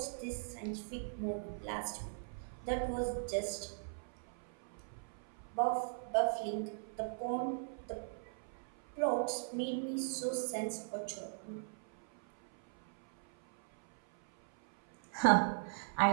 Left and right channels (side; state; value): left; silent; 52 dB below the other